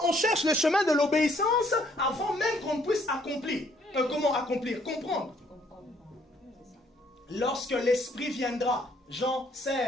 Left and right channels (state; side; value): normal; both; correlation 0.66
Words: on cherche le chemin de l'obéissance avant même qu'on puisse accomplir. Comment accomplir? Comprendre. Lorsque l'Esprit viendra, Jean